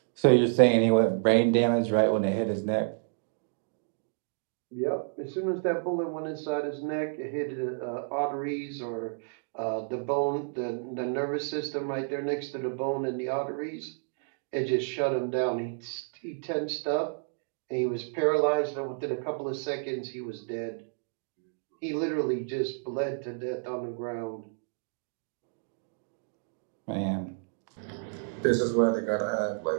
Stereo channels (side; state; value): left; silent; digital silence